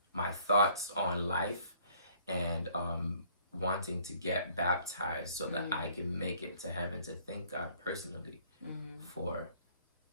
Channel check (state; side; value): inverted; both; correlation -0.59